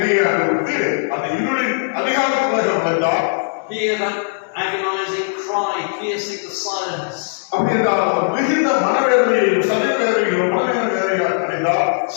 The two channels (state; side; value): silent; right; digital silence